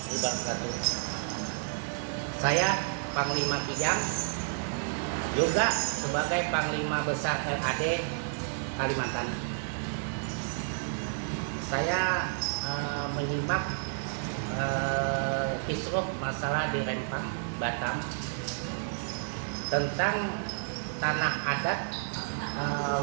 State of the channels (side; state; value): left; silent; digital silence